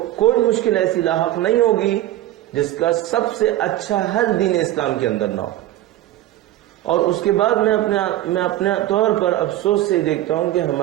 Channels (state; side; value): quieter; left; 14.4 dB